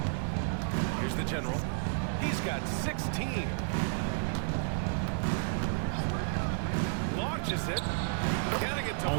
Here's the general. He's got 16. Launches it. Getting it to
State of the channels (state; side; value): silent; left; digital silence